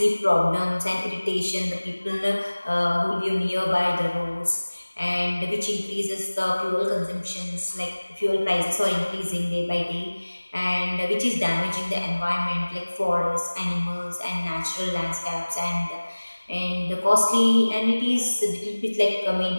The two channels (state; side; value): inverted; both; correlation -1.00